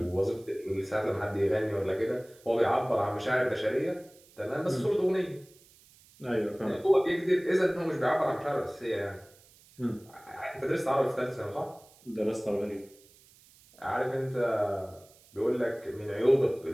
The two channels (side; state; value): right; noise; hiss, 27 dB below the sound